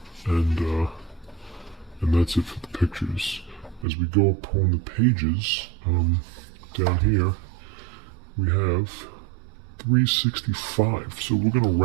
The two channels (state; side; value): drops out; left; at 3.9 s